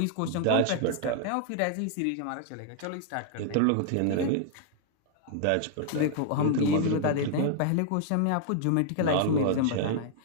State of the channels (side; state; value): both; different; correlation -0.01